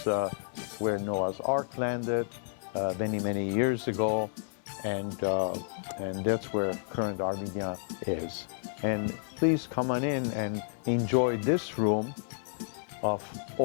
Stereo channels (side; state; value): right; silent; 57 dB below the other